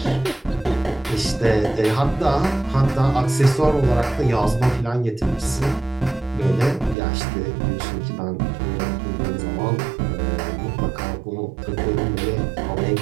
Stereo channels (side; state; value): left; drops out; at 7.0 s